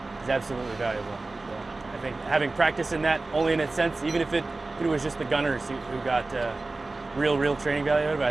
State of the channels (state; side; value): quieter; left; 3.3 dB